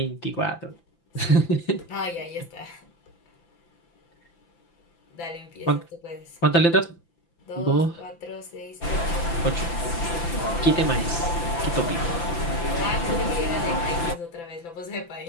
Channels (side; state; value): right; late; 5.9 ms